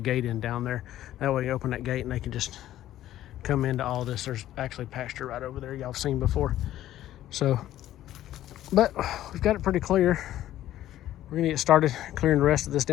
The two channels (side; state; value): right; quieter; 13.2 dB